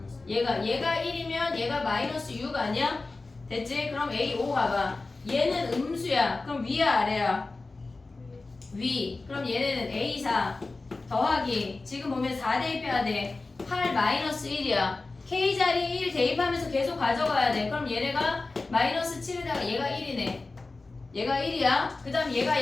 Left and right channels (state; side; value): quieter; right; 3.5 dB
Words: 얘가 1이면 얘가 마이너스 6 아니야? 됐지? 그럼 A5 가봐. 얘는 음수야. 그럼 위야 아래야? 위. 그럼 얘네는 A4 더하기 지금 보면 4 대입해야 돼. 8 마이너스 1이야. K자리 1 대입하면서 계속 가져가야 돼. 그럼 얘네가 마이너스 7에다가 얘가 1이네. 얘가 1이야. 그 다음 얘가